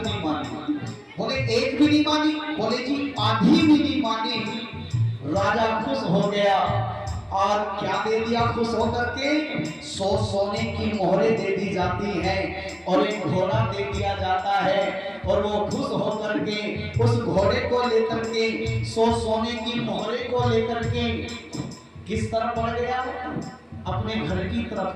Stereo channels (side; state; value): both; identical; correlation 1.00